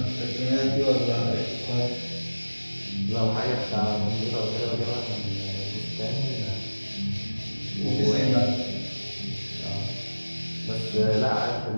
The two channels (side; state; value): both; inverted; correlation -1.00